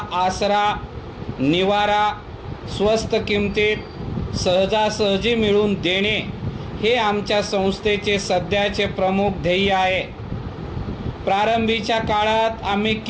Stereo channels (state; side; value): identical; both; correlation 1.00